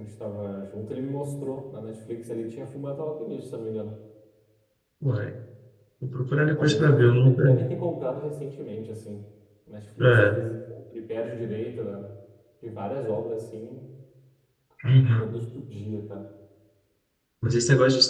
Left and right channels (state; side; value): identical; both; correlation 1.00